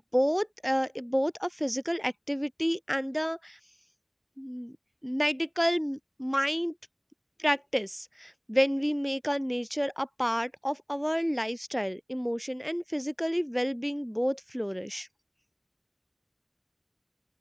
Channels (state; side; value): identical; both; correlation 1.00